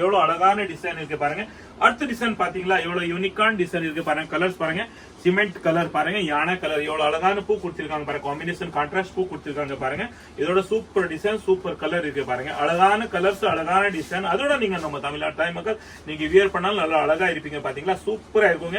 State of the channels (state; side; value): identical; both; correlation 1.00